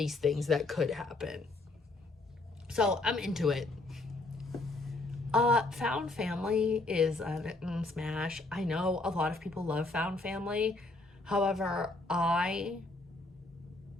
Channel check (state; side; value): quieter; right; 3.0 dB